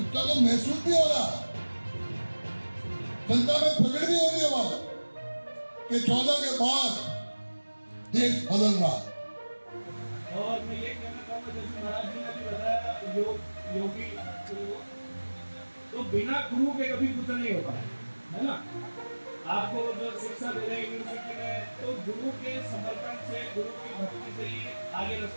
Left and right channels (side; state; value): both; inverted; correlation -1.00